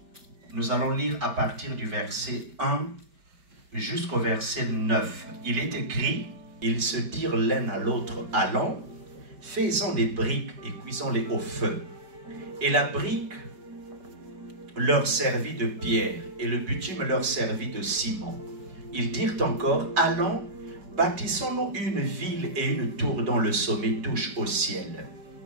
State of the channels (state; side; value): late; left; 5.3 ms